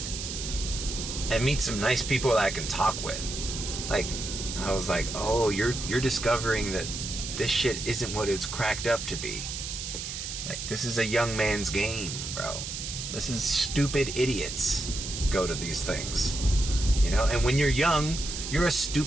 and meet some nice people that I can talk with. Like, I was like, oh, you're discovering that this shit isn't what it's cracked up to be. Like, this is a young man's game, bro. This is stupid idiots go to these things, you know. And when you're young, you're a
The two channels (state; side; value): noise; right; hiss, 6 dB below the sound